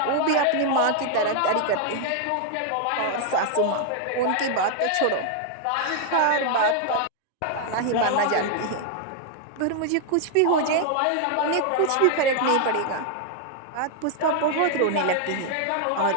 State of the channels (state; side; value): different; both; correlation 0.00